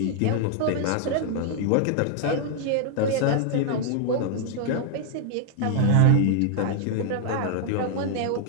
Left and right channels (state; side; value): different; both; correlation 0.00